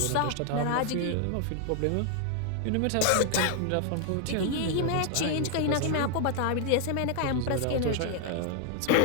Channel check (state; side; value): different; both; correlation 0.00